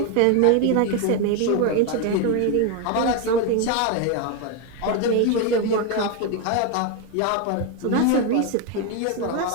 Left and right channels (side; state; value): both; different; correlation 0.01